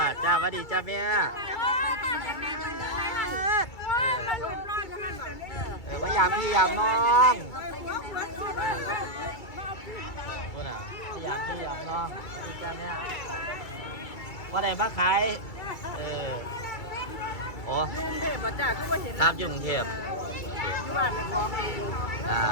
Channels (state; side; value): late; right; 2.3 ms